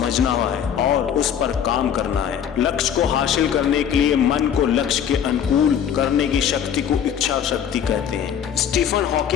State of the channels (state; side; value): quieter; right; 8.7 dB